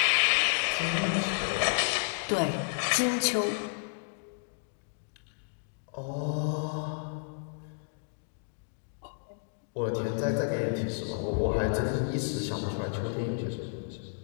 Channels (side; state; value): right; silent; digital silence